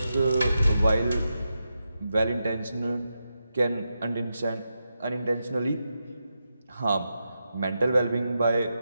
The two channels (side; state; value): both; inverted; correlation -0.87